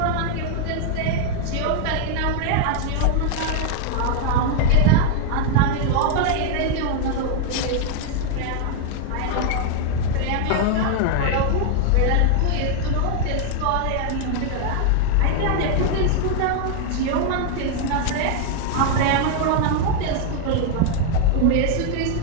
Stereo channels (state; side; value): different; both; correlation 0.00